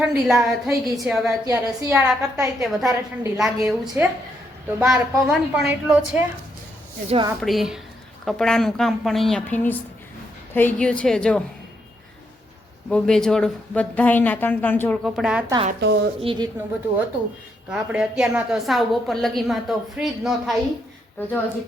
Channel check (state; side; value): normal; both; correlation 0.77